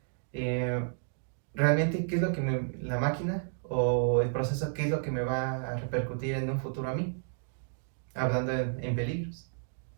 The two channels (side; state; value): left; silent; digital silence